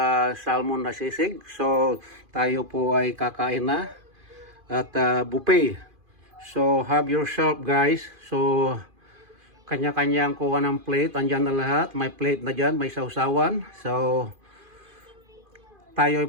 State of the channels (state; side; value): late; left; 2.5 ms